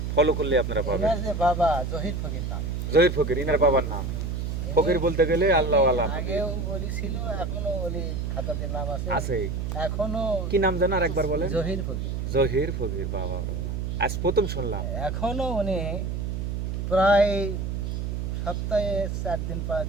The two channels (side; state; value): right; noise; hum, 3 dB below the sound